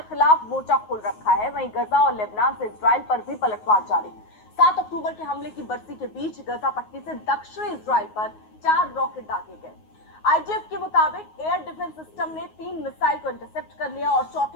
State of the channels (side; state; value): right; late; 9.5 ms